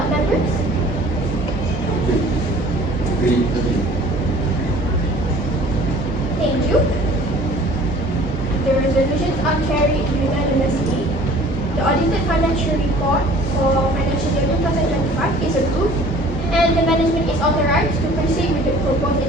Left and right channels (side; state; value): both; normal; correlation 0.49